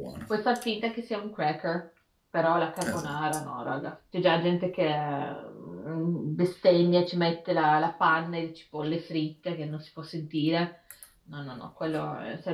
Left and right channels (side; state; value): both; identical; correlation 1.00